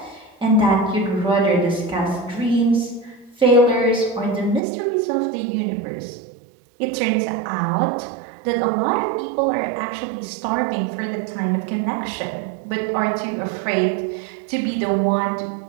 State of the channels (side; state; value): left; drops out; at 4.6 s